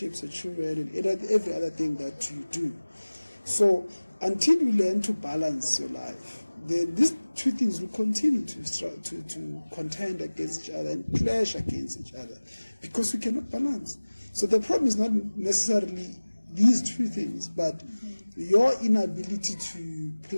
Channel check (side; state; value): both; inverted; correlation -1.00